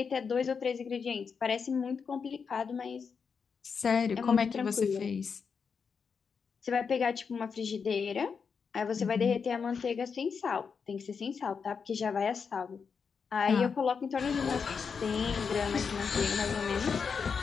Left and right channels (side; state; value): right; quieter; 5.9 dB